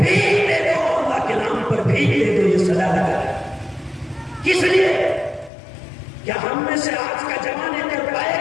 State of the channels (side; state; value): right; drops out; at 5.5 s